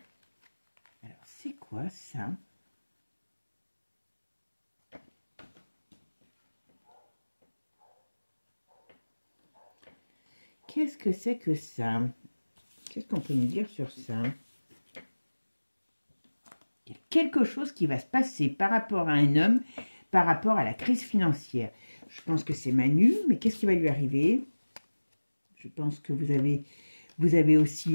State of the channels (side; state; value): both; inverted; correlation -1.00